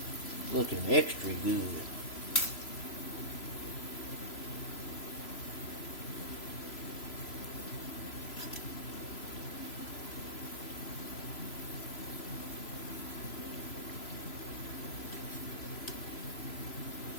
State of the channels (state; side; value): late; right; 3.0 ms